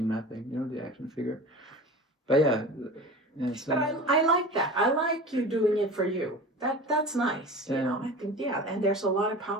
nothing. The action figure. But yeah. Yeah, it's But like, I like that. I like you doing it for you. That's nice. You know, I think, yeah, and there's a lot of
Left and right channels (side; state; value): both; normal; correlation 0.35